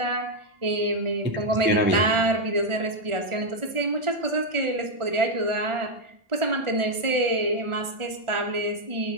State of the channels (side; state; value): left; late; 1.4 ms